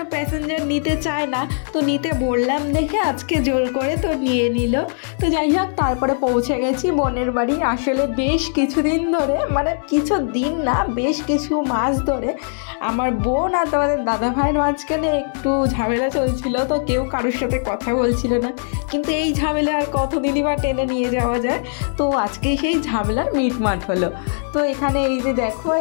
প্যাসেঞ্জার নিতে চায় না, তো নিতে বললাম দেখে আজকে জোর করে তো নিয়ে নিল। তো যাই হোক, তারপরে পৌঁছে গেছি বোনের বাড়ি। আসলে বেশ কিছুদিন ধরে, মানে কিছু দিন না, বেশ কিছু মাস ধরে আমার বোন আর তোমাদের দাদা ভাইয়ের মাঝখানে একটু ঝামেলা চলছিল। তো কেউ কারোর সাথে কথা বলছিল না, কিন্তু এই ঝামেলা আর কতদিনই বা টেনে নিয়ে যাওয়া যায়। তো আজকে সেই ঝামেলার মিটমাট হলো। তো এখানে এই যে দেখো,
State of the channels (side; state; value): right; silent; digital silence